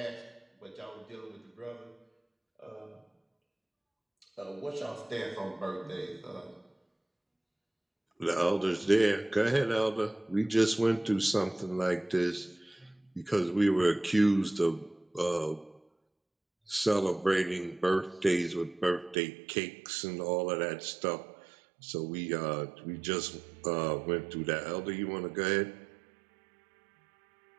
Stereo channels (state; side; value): drops out; left; at 19.2 s